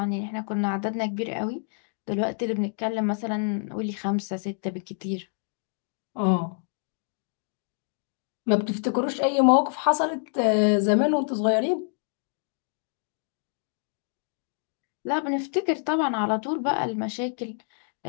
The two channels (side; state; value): right; silent; 60 dB below the other